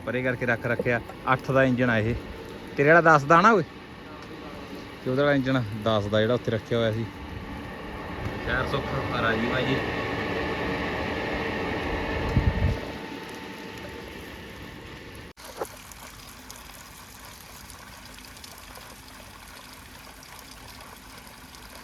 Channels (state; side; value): identical; both; correlation 1.00